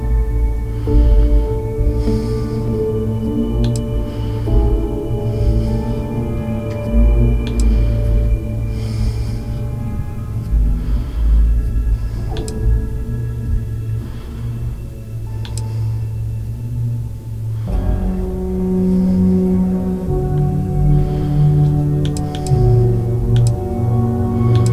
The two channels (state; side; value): identical; both; correlation 1.00